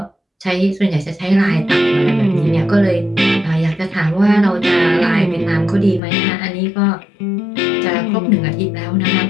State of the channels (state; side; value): drops out; right; at 6.0 s